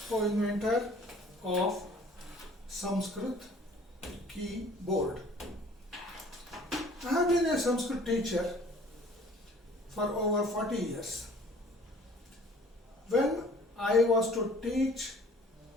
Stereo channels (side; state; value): both; normal; correlation 0.52